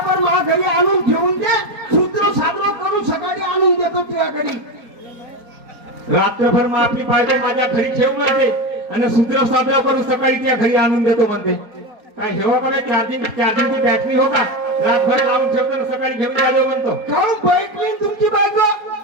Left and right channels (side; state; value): left; late; 4.7 ms